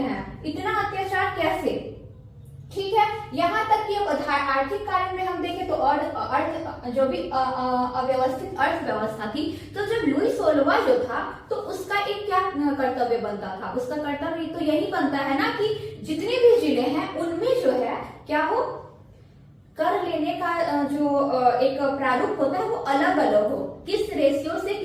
हैं, इतना अत्याचार कैसे? ठीक है, यहाँ तक कि अब आर्थिक कारण में हम देखें तो और अर्थ जो भी अव्यवस्थित अर्थव्यवस्था थी, तो जब लुई 16वां जो था तो उसका एक क्या कर्तव्य बनता था, उसका कर्तव्य तो यही बनता है ना कि जितने भी जिले हैं उनमें जो है क्या हो, कर लेने का जो एक प्रारूप होता है वो अलग अलग हो, किस रेशियो से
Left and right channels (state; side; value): identical; both; correlation 1.00